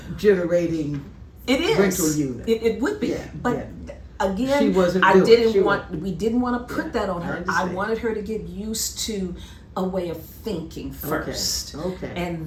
generating rental unit. It would be, but again, she wasn't we didn't want to put that on her. I wanted her to get used to a way of thinking first. Okay.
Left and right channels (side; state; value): both; identical; correlation 1.00